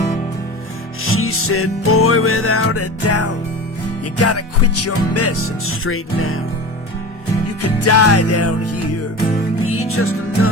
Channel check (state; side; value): normal; both; correlation 0.31